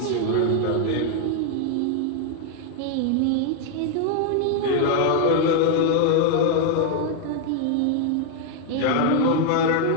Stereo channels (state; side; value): different; both; correlation 0.01